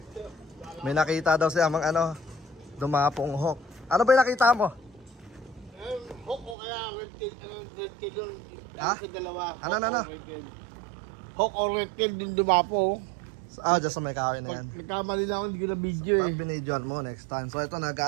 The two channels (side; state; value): left; drops out; at 6.6 s